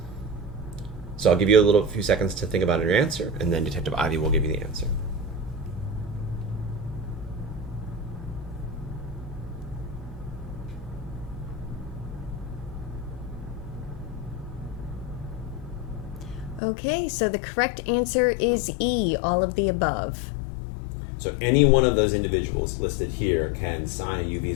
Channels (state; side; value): drops out; right; at 16.6 s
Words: So I'll give you a few seconds to think about your answer, and then Detective Ivy will give you the answer. Okay, so the correct answer is E, all of the above. So any one of those individuals listed here can sign a U